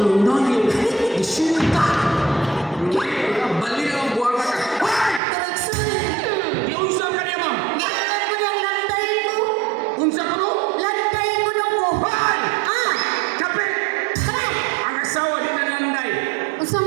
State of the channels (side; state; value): left; drops out; at 5.2 s